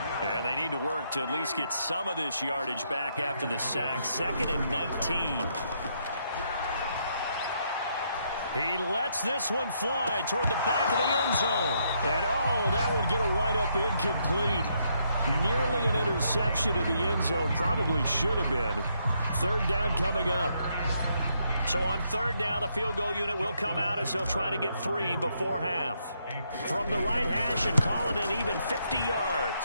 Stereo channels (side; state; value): both; inverted; correlation -0.75